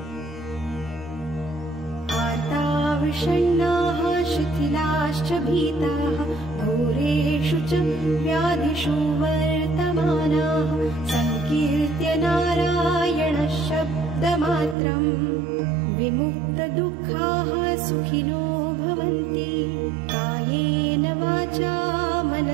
आर्ताविषण्णाः शिथिलाश्च भीताः घोरेषु च व्याधिषु वर्तमानाः संकीर्त्य नारायणः शब्दमात्रं विमुक्तदुःखाः सुखिनो भवन्ति कायेन वाचा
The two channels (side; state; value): left; drops out; at 14.8 s